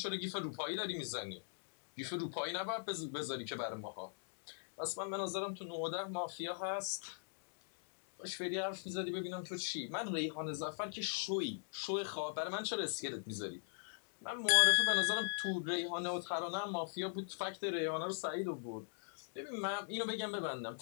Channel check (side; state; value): right; silent; digital silence